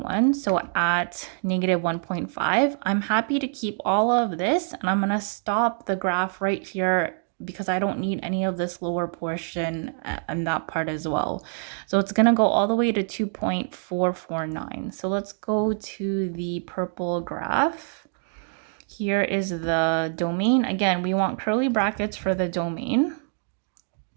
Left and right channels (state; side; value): silent; left; 61 dB below the other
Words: one. So at negative 1.5, I'm happy to keep all of this and I'm gonna stop the graph right here because I don't need any of this lower portion and that part as well. So it's gonna go all the way to 2.449. So let's go to the purple graph. Here is the domain. Again, we want curly brackets for the domain.